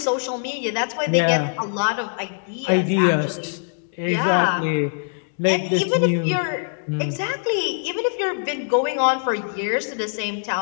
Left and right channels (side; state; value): right; silent; digital silence